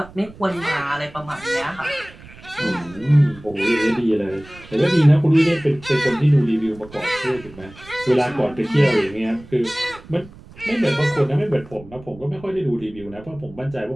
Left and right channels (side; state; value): right; noise; rumble, 20 dB below the sound